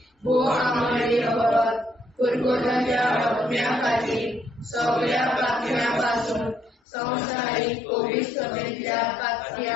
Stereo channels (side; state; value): right; drops out; at 6.8 s